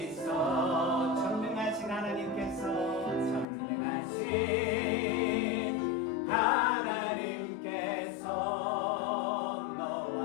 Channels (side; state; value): right; drops out; at 3.5 s